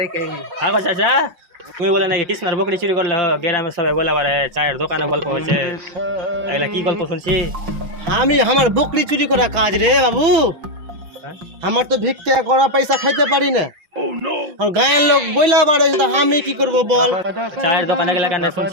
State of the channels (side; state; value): left; late; 6.1 ms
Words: আগো চাচা তুমি বলে নাকি কৃষ্ণার বকরি চুরি করলে গ্রামে সবাই বলা পারে চায়ের দোকানে গল্প হচ্ছে, এগুলা কি গল্প শুনছি? আমি আমার বকরি চুরি করা কাজ রে বাবু, হ্যাঁ? আমার তো ভিক্ষা করা পয়সা খাইতে পারি না। আর গায়ের লোক বইলা বাড়ে তো আমি কি করব বল? চায়ের দোকানে গেলে কেন